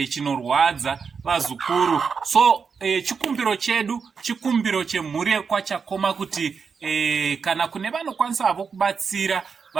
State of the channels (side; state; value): left; quieter; 5.7 dB